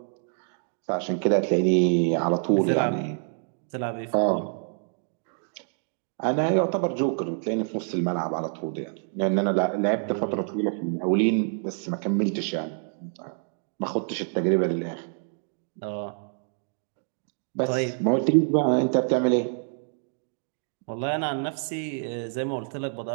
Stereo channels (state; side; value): silent; left; 60 dB below the other